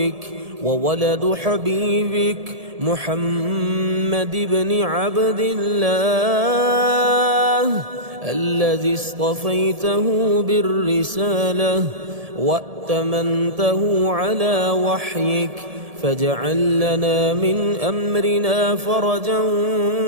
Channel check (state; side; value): late; left; 1.7 ms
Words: وولد حبيبك محمد بن عبد الله، الذي اصطفيته بالرسالة وأتمنته على وحيك، فاجعل لنا من أمرنا فرجا